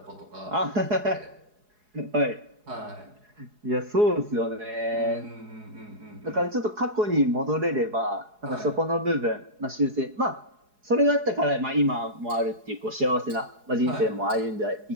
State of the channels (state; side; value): late; left; 4.8 ms